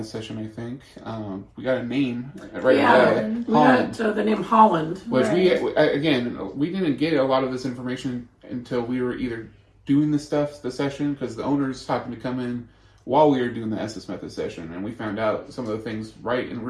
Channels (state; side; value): identical; both; correlation 1.00